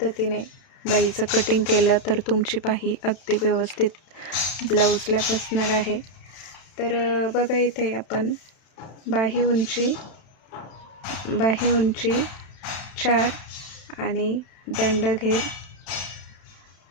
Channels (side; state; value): right; late; 31 ms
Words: बाहीचं कटिंग केलं तर तुमची बाही अगदी व्यवस्थित ब्लाऊजला बसणार आहे. तर बघा, इथे आपण बाही उंची 4 आणि दंडघेर